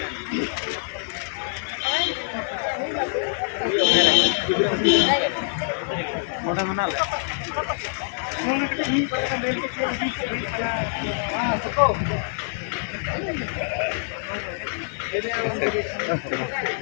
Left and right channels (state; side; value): silent; right; digital silence